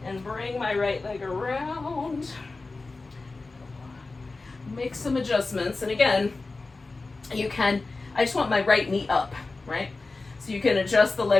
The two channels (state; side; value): quieter; right; 3.6 dB